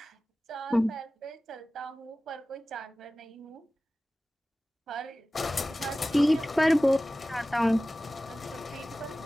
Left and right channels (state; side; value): normal; both; correlation 0.97